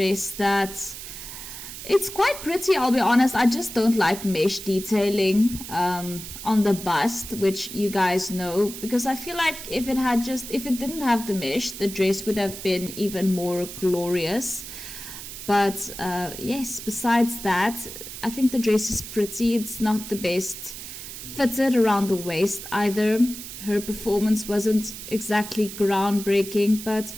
that it's quite pretty, I'll be honest. I just don't like mesh detailing on the bust, which you guys know, because I feel like if it didn't have the mesh, the dress would have been even more glorious. But yes, besides that, I think the dress is pretty. It's not the best fitted around the waist either. Her performance wasn't exactly groundbreaking, but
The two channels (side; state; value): right; noise; hiss, 11 dB below the sound